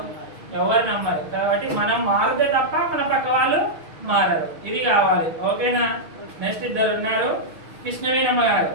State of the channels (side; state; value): left; late; 6.4 ms